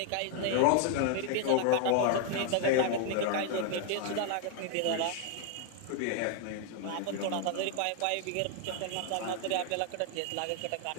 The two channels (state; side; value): different; both; correlation 0.00